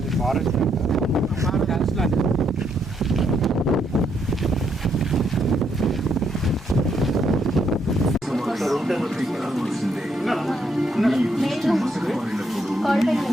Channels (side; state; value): both; normal; correlation 0.75